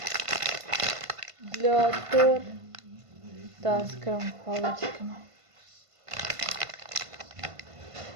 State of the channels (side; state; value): left; late; 1.5 ms